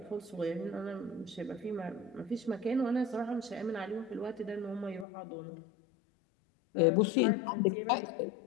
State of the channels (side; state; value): right; drops out; at 5.1 s